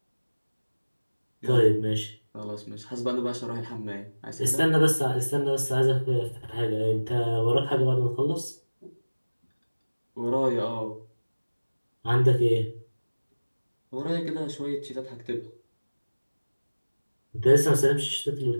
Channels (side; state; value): both; inverted; correlation -1.00